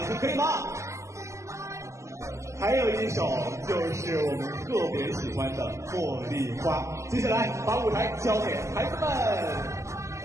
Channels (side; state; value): left; late; 0.14 ms